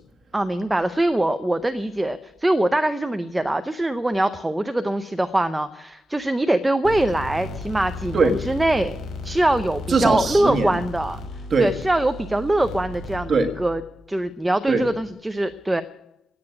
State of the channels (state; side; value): normal; both; correlation 0.93